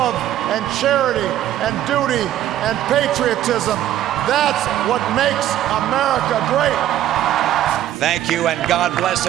and charity and duty and patriotism. That's what makes America great. Thank you, and God bless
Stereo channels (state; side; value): quieter; left; 12.3 dB